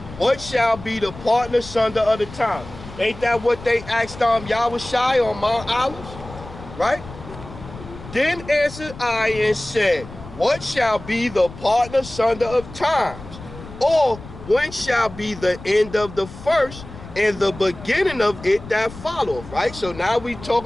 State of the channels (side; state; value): left; noise; rumble, 15 dB below the sound